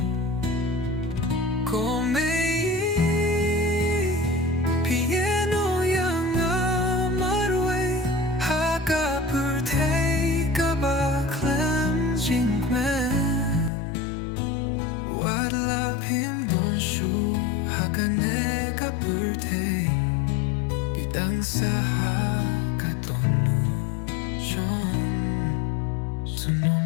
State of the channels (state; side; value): drops out; right; at 13.7 s